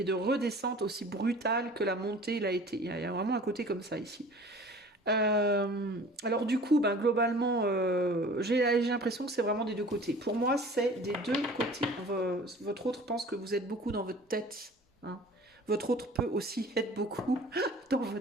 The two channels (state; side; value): normal; both; correlation 0.45